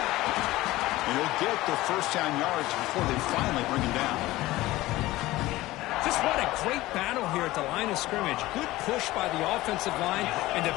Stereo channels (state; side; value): quieter; right; 17.8 dB